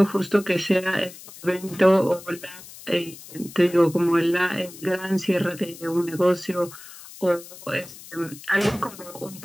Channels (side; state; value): left; noise; hiss, 17 dB below the sound